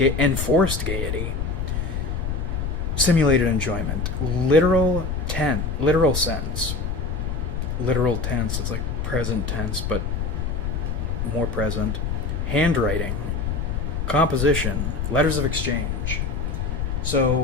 Simulated enjoyment. Literal sense. Literal tense, it's like present tense, but more present. Handwriting. Composition. Letters of exchange.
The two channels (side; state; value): left; noise; rumble, 2 dB below the sound